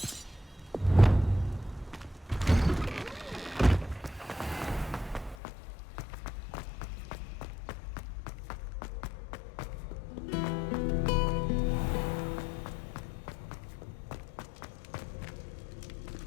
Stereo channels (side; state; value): right; drops out; at 5.4 s